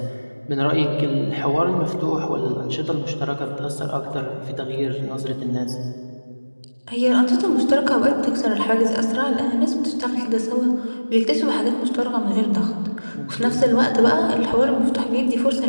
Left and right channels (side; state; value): both; inverted; correlation -1.00